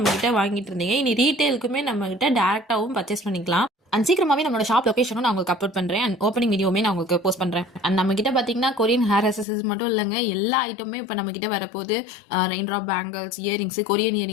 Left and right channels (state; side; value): drops out; right; at 9.5 s